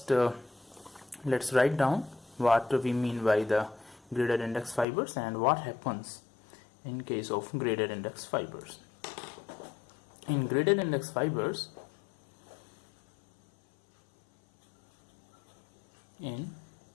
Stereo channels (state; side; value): drops out; right; at 4.9 s